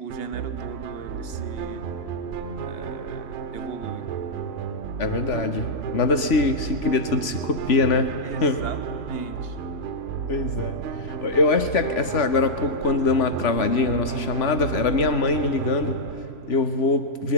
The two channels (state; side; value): late; right; 3.5 ms